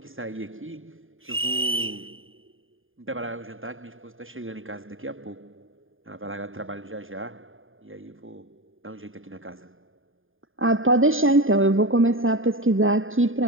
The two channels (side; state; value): left; late; 0.59 ms